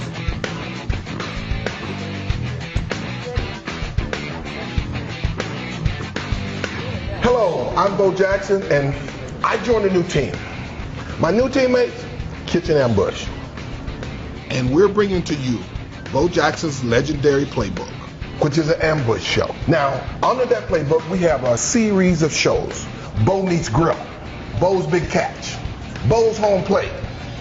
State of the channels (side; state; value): both; identical; correlation 1.00